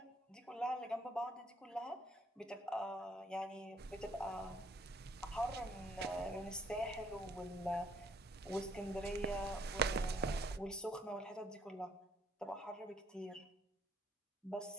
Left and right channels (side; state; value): both; normal; correlation 0.64